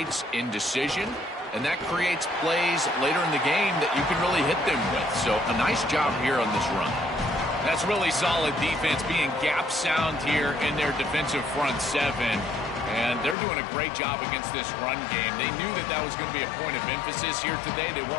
indecision, and that creates plays later in the game that you can really hit them with. So a nice job here on this run. That's really solid defense, being gap sound here in their defensive front seven. And they're doing a great job against this run game. They knew that that was going to be a point of emphasis here today. They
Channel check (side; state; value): right; drops out; at 13.4 s